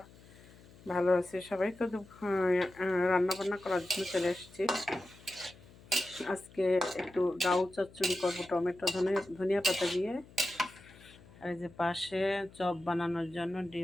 ভালো আছি সবাই। তো রান্না বান্না করার জন্য চলে এসেছি। আজকে একটু ডাউ চচ্চড়ি করবো টমেটো ধনিয়া পাতা দিয়ে। আর এই যে পাশে চপ বানানোর জন্য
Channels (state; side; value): noise; left; hum, 23 dB below the sound